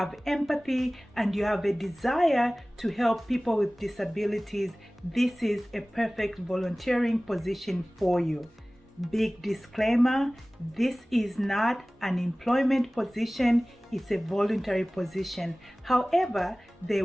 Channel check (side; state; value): both; normal; correlation 0.98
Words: empathy, and you have a desire to help people with disabilities, this is a perfect volunteering position for you. Big disclaimer, this is not an employment position, it's a voluntary position. However, they